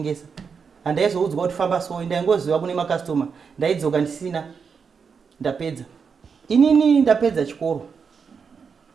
Handaizoudzwa kuti famba so ndaingoziva kune makastoma ndaidzoka ndisina ndapedza inini ndapedza chikoro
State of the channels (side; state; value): left; quieter; 5.9 dB